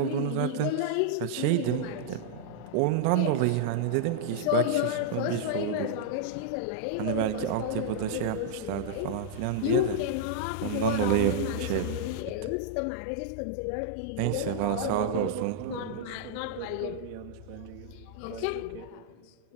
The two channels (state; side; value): different; both; correlation -0.02